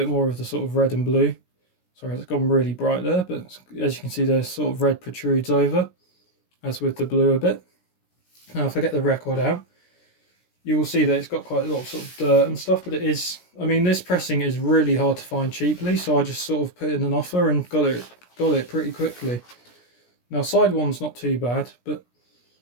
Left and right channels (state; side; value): late; right; 17 ms